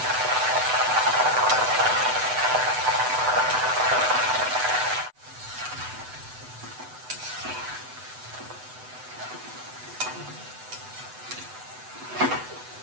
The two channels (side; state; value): left; late; 8.0 ms